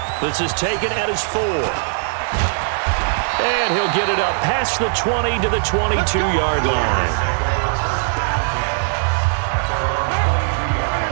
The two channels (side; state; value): left; silent; 66 dB below the other